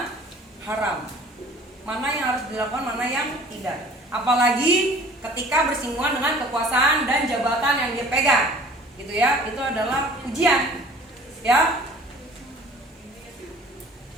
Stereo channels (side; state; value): both; normal; correlation 0.49